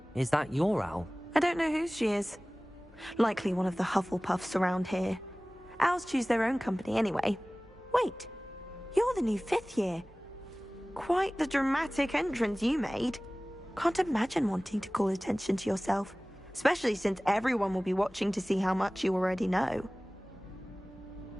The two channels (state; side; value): normal; both; correlation 0.98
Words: Is that your owl? I don't know whose she is. Likely one of the Hufflepuffs around here. Owls choose their own company anyway. Wait, you're the new 5th year. Quite the dramatic entrance you made. Can't imagine wanting to call attention to yourself, especially since everyone will be watching to see how much you already know.